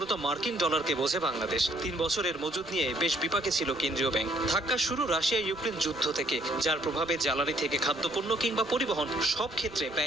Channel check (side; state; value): right; noise; rumble, 24 dB below the sound